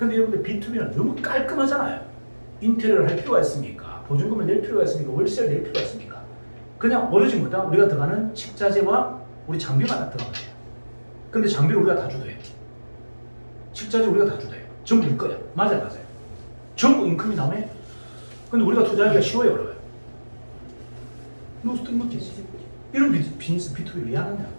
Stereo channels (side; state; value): both; inverted; correlation -1.00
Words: 여러분들 B2B는 너무 깔끔하잖아요. 인테리어를 할 필요가 있습니까? 보증금을 낼 필요가 있습니까? 월세를 낼 필요가 있습니까? 그냥 오로지 뭐다? 우리가 들어가는 식자재와 우리 장비만 다 들어가는 거예요. 근데 장비를 우리가 다 주도해요. 식자재 우리가 다 주도해요. 전부 일 거야. 맞아요. 전부 인컴이 나오네? 근데 우리가 투자하기가 쉬워요, 어려워요? 너무 뜬금없지. 이런 비즈니스 B2B를 왜 하느냐?